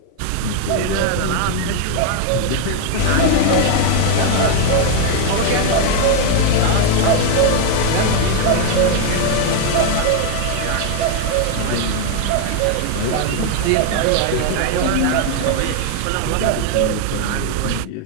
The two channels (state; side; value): different; both; correlation 0.01